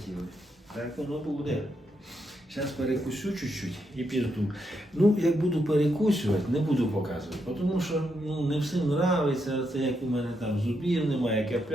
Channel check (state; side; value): normal; both; correlation 0.81